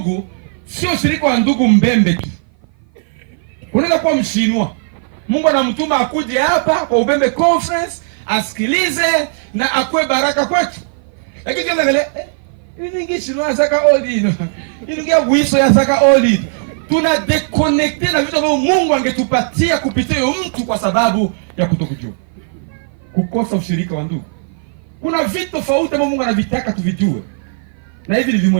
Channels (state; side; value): silent; left; 55 dB below the other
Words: sio ushirika wa ndugu mbembe tu. Unaweza kuwa mshinwa, Mungu anamtuma akuje hapa kwa Ubembe Conference asikilize na akwe baraka kwetu. Lakini kama vile ningi shinwa saka oli. Ingia wiso ya saka oli. Tuna deconnecte na vitu ambavyo Mungu angetupatia kupitia huyo mtu kwa sababu ya kutokujua. Kukosa ushirika wa ndugu. Kuna vitu tofauti ambavyo Mungu anavitaka tuvijue. Na hivi ni